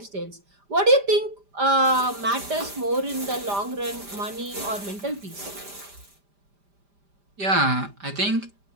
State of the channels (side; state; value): left; late; 5.0 ms